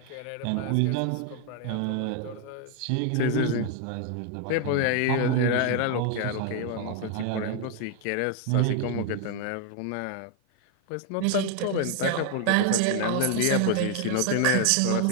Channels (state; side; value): different; both; correlation 0.00